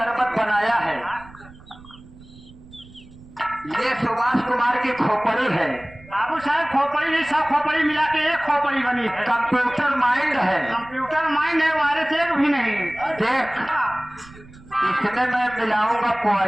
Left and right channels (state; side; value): noise; right; rumble, 21 dB below the sound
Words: बनाया है, ये सुभाष कुमार की खोपड़ी है। बाबू साहब खोपड़ी नहीं, सब खोपड़ी मिला के एक खोपड़ी बनी है। कंप्यूटर माइंड है, कंप्यूटर माइंड है, वायरस एक भी नहीं। देख इसमें मैं मिलाऊंगा